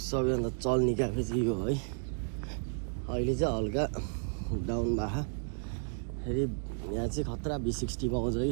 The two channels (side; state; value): left; silent; 56 dB below the other